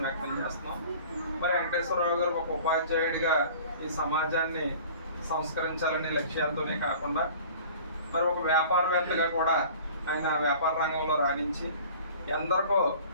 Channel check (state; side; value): inverted; both; correlation -0.46